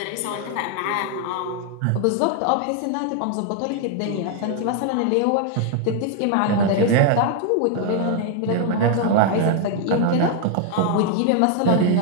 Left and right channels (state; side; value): different; both; correlation 0.00